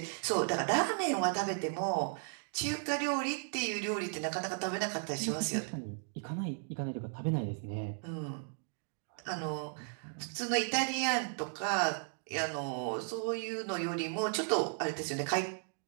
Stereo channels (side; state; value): left; silent; 54 dB below the other